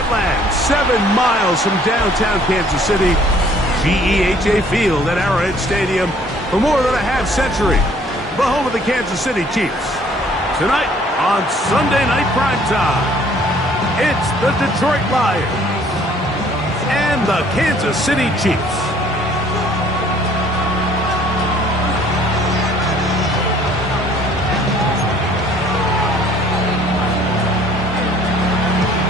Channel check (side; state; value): both; normal; correlation 0.58